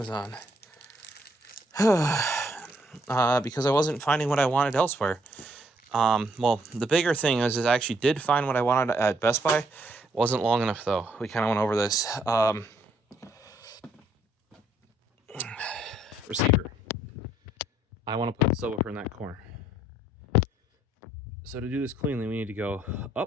because I wasn't finding what I wanted elsewhere. Well, the bigger thing is I actually did find what I wanted at Best Buy. It wasn't long enough, though. We kind of went over this. Receiver. I want to put the subwoofer in that corner. So to do this cleanly, we need to go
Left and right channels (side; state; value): both; normal; correlation 0.69